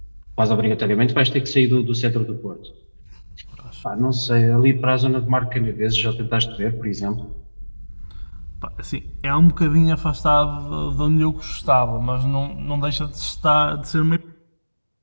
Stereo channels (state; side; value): inverted; both; correlation -1.00